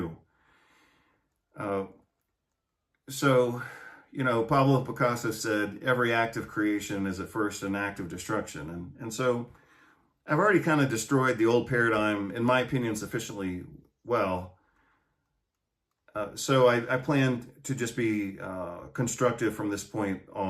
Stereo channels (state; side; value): identical; both; correlation 1.00